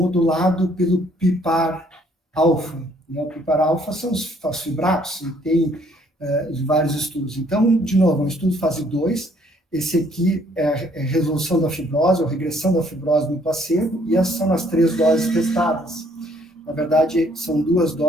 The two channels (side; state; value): both; normal; correlation 0.64